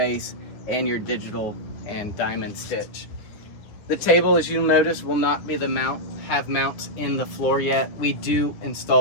and your digital and diamond stitch. The table, as you'll notice, will not be have mounts in the floor yet. We do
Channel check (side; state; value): right; late; 9.5 ms